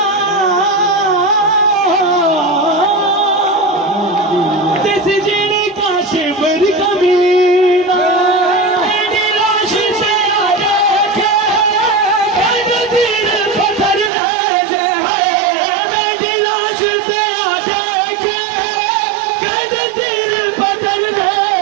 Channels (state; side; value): drops out; left; at 14.1 s